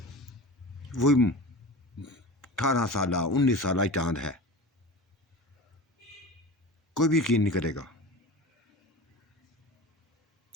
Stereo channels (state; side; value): normal; both; correlation 0.33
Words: वो 18 साल 19 साल चांद है, कोई भी यकीन नहीं करेगा।